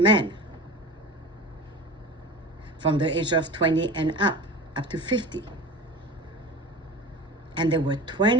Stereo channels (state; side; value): normal; both; correlation 0.34